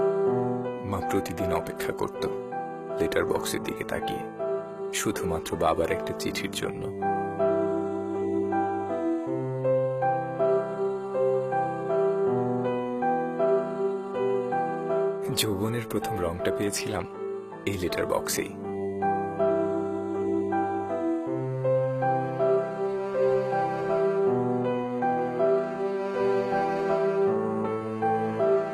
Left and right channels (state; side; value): identical; both; correlation 1.00